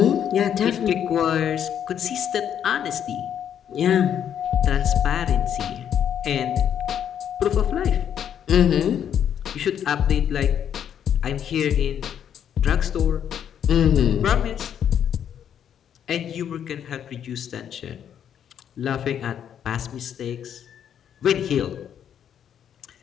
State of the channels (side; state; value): right; quieter; 9.1 dB